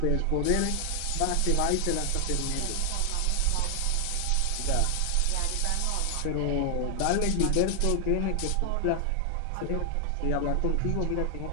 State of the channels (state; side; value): different; both; correlation 0.00